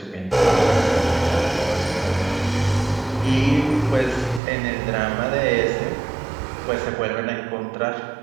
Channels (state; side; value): drops out; left; at 4.4 s